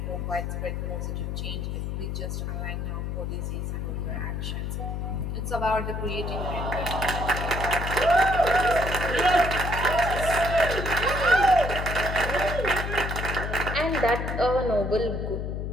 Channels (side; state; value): left; noise; hum, 3 dB below the sound